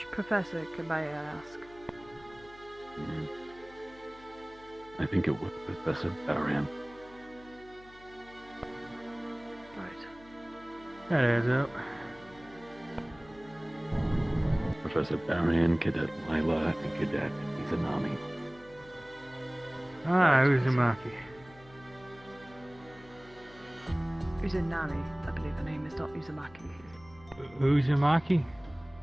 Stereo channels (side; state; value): left; noise; hum, 23 dB below the sound